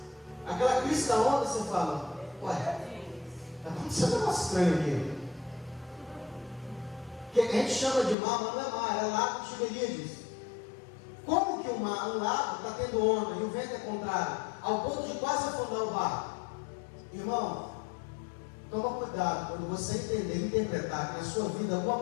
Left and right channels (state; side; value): drops out; right; at 8.2 s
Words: aquela crista da onda, você fala: ué, está acontecendo um negócio estranho aqui. Que a gente chama de mar, mas não é mar, é lago de Tiberíades. Como que um lago está tendo onda e o vento é contrário, ao ponto de quase afundar o barco? Irmão, toma cuidado quando você entender e interpretar que na sua vida alguma